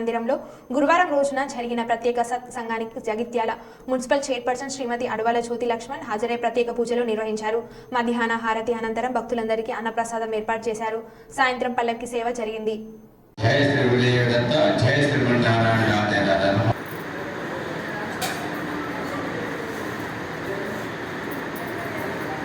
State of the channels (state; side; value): identical; both; correlation 1.00